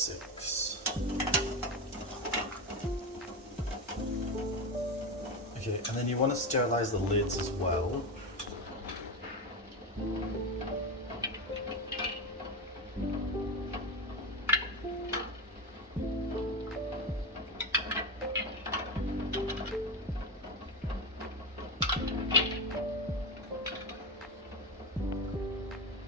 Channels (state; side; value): normal; both; correlation 0.17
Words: Okay, and then you want to sterilize the lids as well.